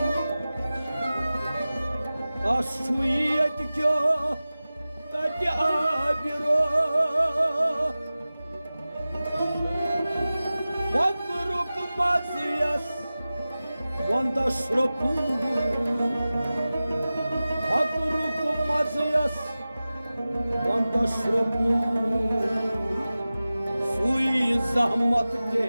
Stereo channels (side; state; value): both; inverted; correlation -0.96